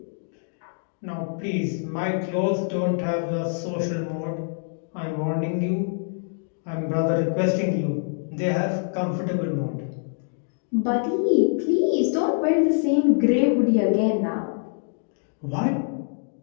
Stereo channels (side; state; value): right; silent; digital silence